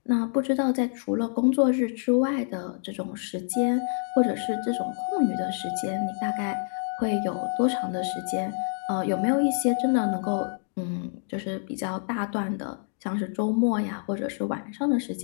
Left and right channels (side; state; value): right; silent; 60 dB below the other